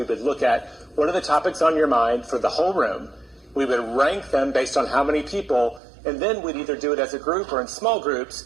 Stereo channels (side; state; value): left; drops out; at 5.8 s